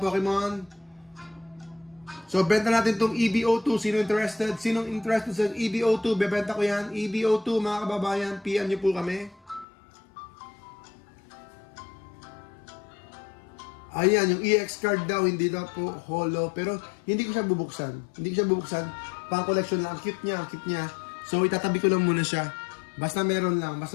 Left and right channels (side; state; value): right; drops out; at 9.7 s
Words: Pokemon. So, benta natin itong EBO2. Sinong interested sa EBO2? Bebenta ko yan. EBO2, mga kababayan, PM nyo po kami. Ayan, yung EX card daw, hindi daw po holo. Pero, hindi ko siya bubuksan. Pang collection lang. Ang cute niya. So, itatabi ko lang muna siya. Basta meron lang,